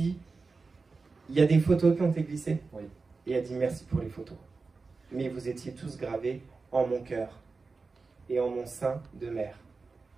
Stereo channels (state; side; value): quieter; left; 4.2 dB